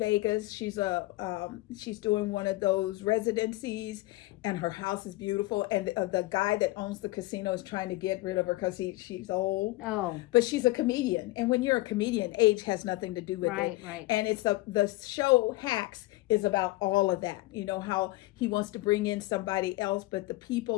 She's doing one of those residencies, and her house is beautiful. And the guy that owns the casino is trying to get rid of her because she's old. Oh, but she's a comedian, and when you're a comedian, age has nothing to do with it. Right. And it's the show Hacks is about all of that. You know, how he wants to bring in somebody else, but the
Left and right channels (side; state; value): right; quieter; 20.0 dB